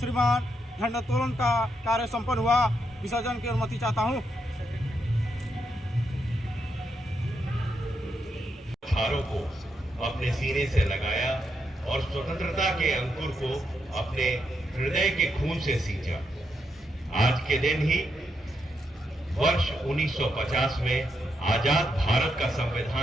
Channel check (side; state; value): both; normal; correlation 0.81